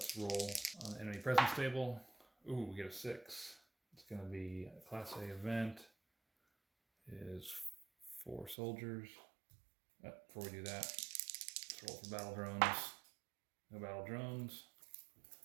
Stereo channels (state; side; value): drops out; left; at 8.6 s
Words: roll on the enemy presence table. Ooh, we get a 6. It's going to be a Class A event. Is 4 soldiers. Before we do that, let's roll for battle drones. No battle drones.